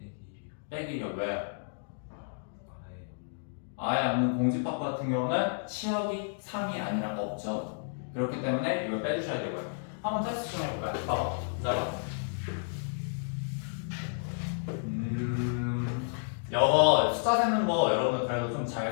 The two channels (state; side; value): silent; right; digital silence